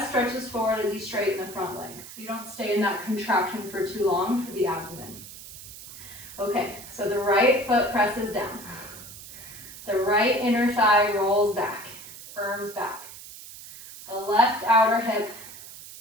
stretches forward as you straighten the front leg. So you don't stay in that contraction for too long for the abdomen. Okay, so the right foot presses down. The right inner thigh rolls back, firms back. The left outer hip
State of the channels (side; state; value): right; noise; hiss, 15 dB below the sound